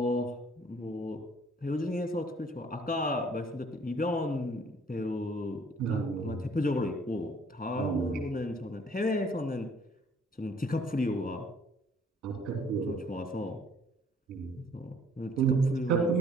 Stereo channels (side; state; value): both; normal; correlation 0.58